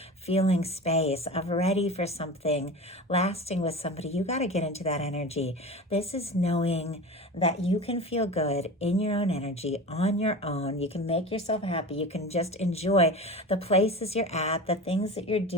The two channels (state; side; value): normal; both; correlation 0.31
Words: feeling space of ready for something lasting with somebody, you got to get into that energy. This is knowing that you can feel good in your own energy, on your own. You can make yourself happy. You can just enjoy the places you're at, the things that you're